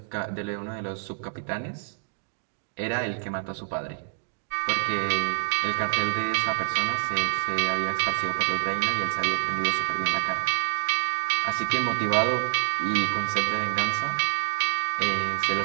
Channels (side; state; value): left; silent; digital silence